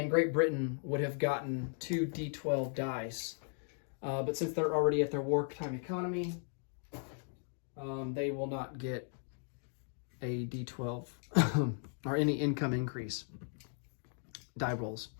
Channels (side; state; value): right; silent; 53 dB below the other